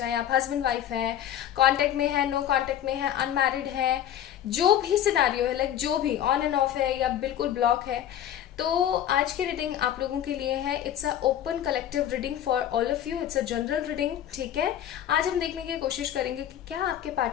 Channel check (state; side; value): quieter; right; 10.9 dB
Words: आप हस्बैंड वाइफ हैं, कांटेक्ट में है, नो कांटेक्ट में है, अनमैरिड है, जो भी सिनारियो है, लाइक जो भी ऑन एंड ऑफ है या बिल्कुल ब्लॉक है, तो आज की रीडिंग आप लोगों के लिए है। It's a open collective reading for all of you. It's a general reading, ठीक है। आज हम देखने की कोशिश करेंगे कि क्या आपके